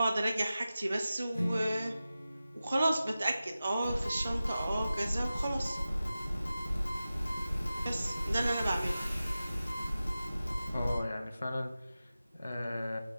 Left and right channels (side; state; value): both; inverted; correlation -0.94